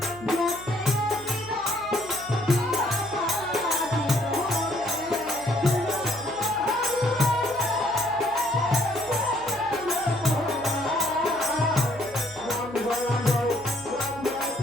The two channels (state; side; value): noise; right; hum, 19 dB below the sound